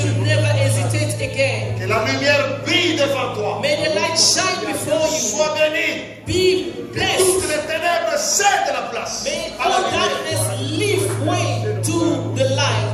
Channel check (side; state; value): both; identical; correlation 1.00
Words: never hesitate again. Que la lumière brille devant toi. May the light shine before you. Sois béni. Be Toutes blessed. les ténèbres cèdent la place May à la all lumière. darkness leave way to the